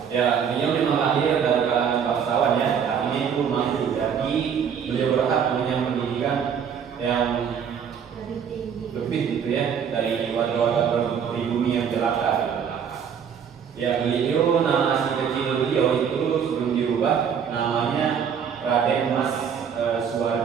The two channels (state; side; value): quieter; left; 7.5 dB